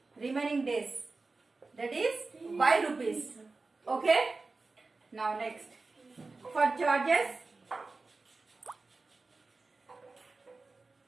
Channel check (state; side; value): quieter; left; 3.7 dB